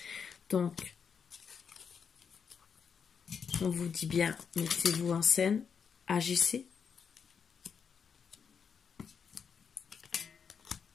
Donc, on vous dit bien, mettez-vous en scène, agissez.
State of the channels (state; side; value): quieter; right; 6.6 dB